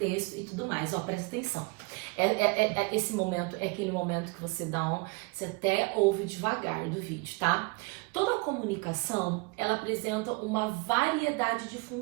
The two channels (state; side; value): quieter; left; 28.0 dB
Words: e tudo mais. Ó, presta atenção. Esse momento é aquele momento que você você até ouve devagar do vídeo, tá? Toda comunicação, ela apresenta uma variedade de